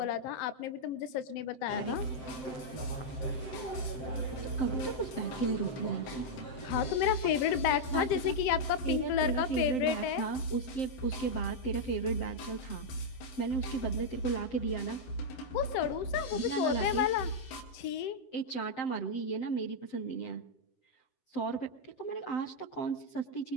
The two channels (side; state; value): right; late; 7.7 ms